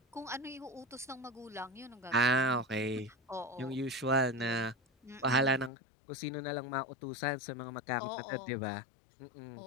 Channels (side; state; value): right; drops out; at 5.7 s